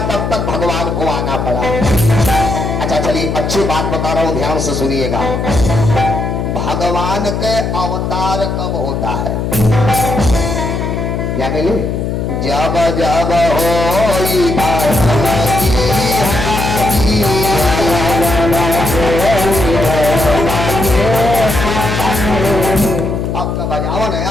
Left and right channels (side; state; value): left; noise; hum, 2 dB below the sound